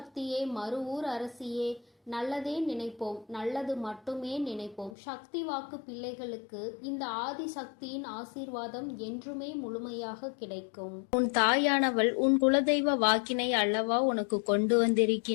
மறுவூர் அரசியே, நல்லதே நினைப்போம், நல்லது மட்டுமே நினைப்போம். சக்தி வாக்கு பிள்ளைகளுக்கு இந்த ஆதி சக்தியின் ஆசீர்வாதம் என்றுமே முழுமையாக கிடைக்கும். உன் தாயானவள் உன் குலதெய்வ வாக்கினை அல்லவா உனக்கு கொண்டு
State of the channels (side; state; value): right; drops out; at 5.0 s